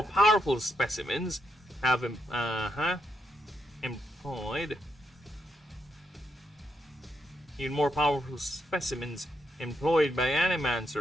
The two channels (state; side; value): normal; both; correlation 0.80